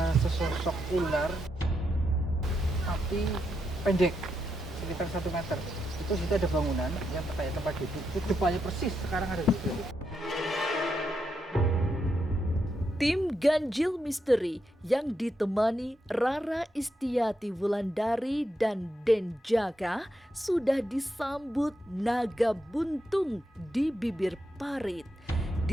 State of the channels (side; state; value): both; normal; correlation 0.83